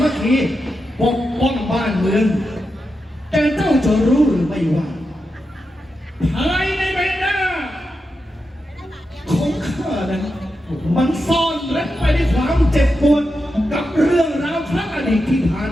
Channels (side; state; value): both; normal; correlation 0.88